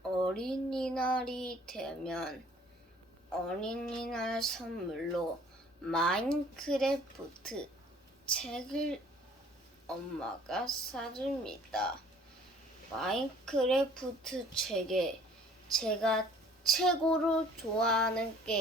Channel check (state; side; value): normal; both; correlation 0.54